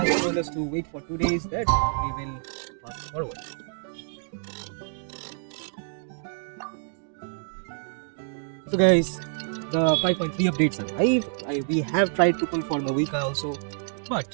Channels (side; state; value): left; silent; digital silence